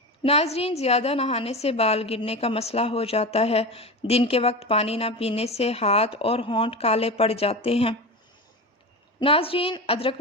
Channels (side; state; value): both; normal; correlation 0.24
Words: ناظرین، زیادہ نہانے سے بال گرنے کا مسئلہ ہو جاتا ہے۔ دن کے وقت پانی نہ پینے سے ہاتھ اور ہونٹ کالے پڑ جاتے ہیں۔ ناظرین،